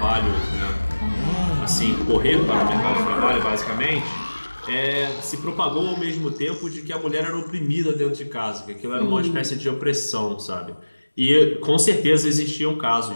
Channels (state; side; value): inverted; both; correlation -1.00